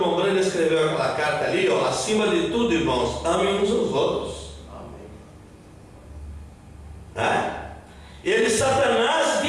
Brando escreveu aquela carta ali, ó, acima de tudo, irmãos, amem uns aos outros. Ele, Satanás,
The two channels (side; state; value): both; identical; correlation 1.00